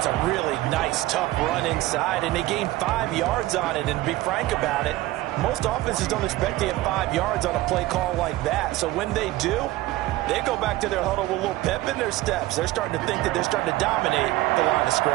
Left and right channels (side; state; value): left; quieter; 17.5 dB